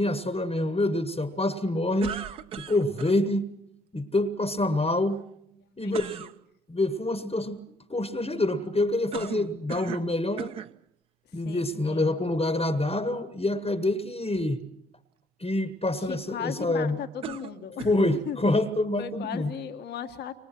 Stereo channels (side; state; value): both; normal; correlation 0.68